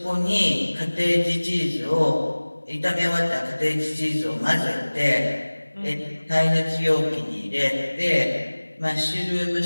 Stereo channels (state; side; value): inverted; both; correlation -1.00